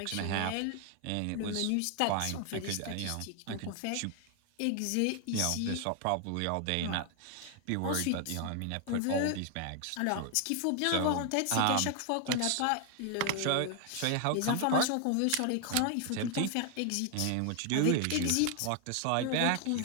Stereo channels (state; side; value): different; both; correlation 0.00